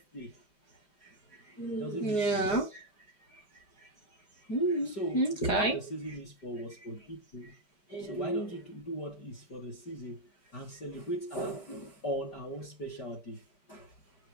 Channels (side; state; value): right; late; 5.2 ms